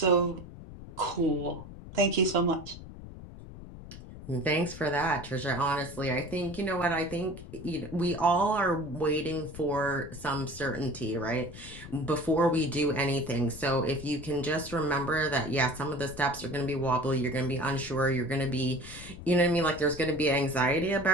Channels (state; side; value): noise; left; rumble, 14 dB below the sound